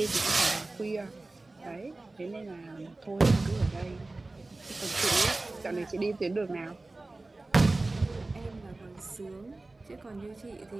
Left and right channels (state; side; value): quieter; left; 3.1 dB